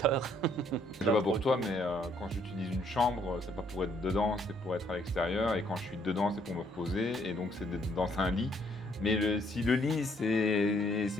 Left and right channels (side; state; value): both; normal; correlation 0.68